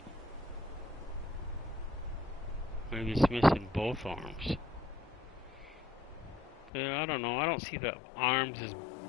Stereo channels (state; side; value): drops out; right; at 6.7 s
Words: Maybe it's missing both arms. I don't know. I don't see the arms as